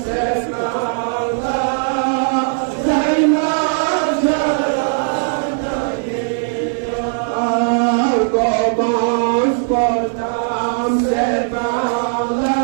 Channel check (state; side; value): silent; left; 67 dB below the other